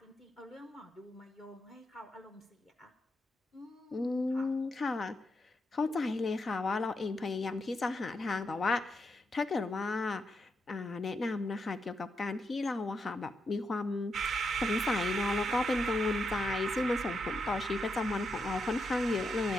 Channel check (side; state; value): both; normal; correlation 0.83